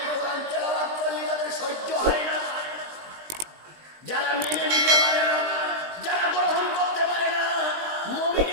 কোরআন তেলাওয়াত করলে যাদের সহ্য হয় না, যারা মেনে নিতে পারে না, যারা গ্রহণ করতে পারে না,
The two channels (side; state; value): left; late; 20 ms